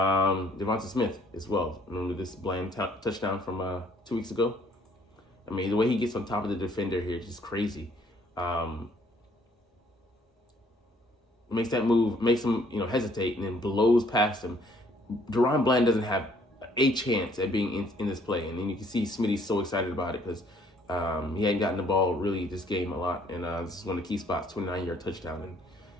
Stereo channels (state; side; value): normal; both; correlation 0.62